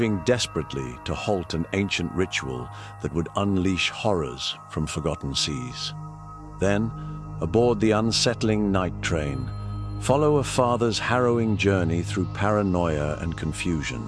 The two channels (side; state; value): both; identical; correlation 1.00